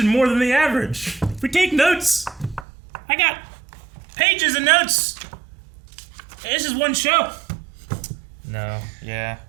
more than the average. We take notes. I got pages of notes. This is one show. No, yeah.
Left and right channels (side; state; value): left; drops out; at 2.7 s